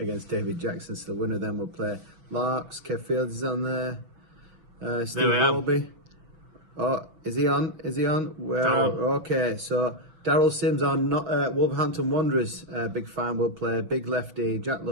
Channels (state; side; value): late; left; 5.8 ms